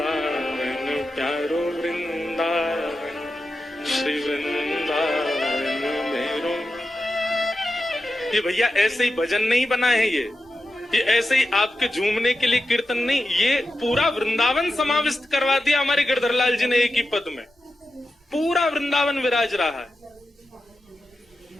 प्यारो वृंदावन, श्री वृंदावन मेरो। ये भैया ऐसे ही भजन नहीं बना है, ये ऐसे ही आपके झूमने के लिए कीर्तन नहीं, ये पूरा वृंदावन समाविष्ट करवा दिया हमारे गिरधरलाल जी ने एक ही पद में। पूरा वृंदावन विराज रहा है।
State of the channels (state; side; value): normal; both; correlation 0.91